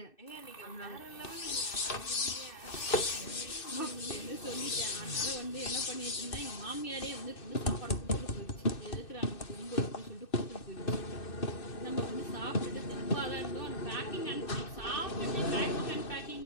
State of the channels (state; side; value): late; right; 2.6 ms